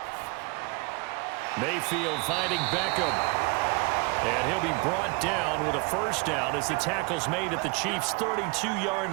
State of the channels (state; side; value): quieter; left; 28.6 dB